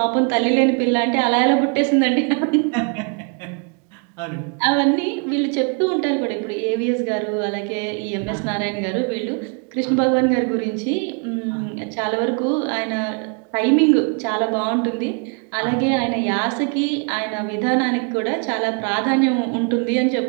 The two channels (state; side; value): quieter; left; 38.1 dB